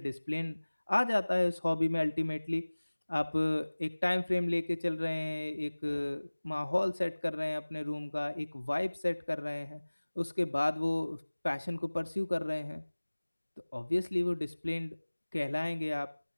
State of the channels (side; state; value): both; inverted; correlation -1.00